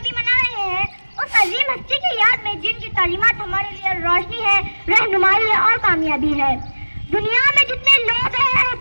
منا رہے ہیں، اس عظیم ہستی کی یاد میں جن کی تعلیمات ہمارے لیے روشنی ہے، رہنمائی ہے اور کامیابی ہے. دنیا میں جتنے لوگ ہیں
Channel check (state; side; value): inverted; both; correlation -1.00